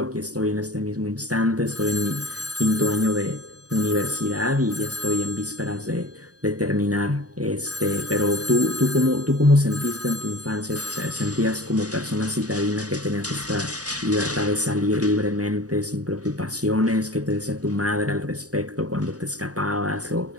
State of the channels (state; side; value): late; left; 0.67 ms